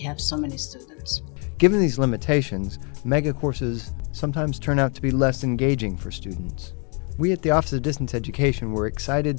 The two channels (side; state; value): right; quieter; 36.0 dB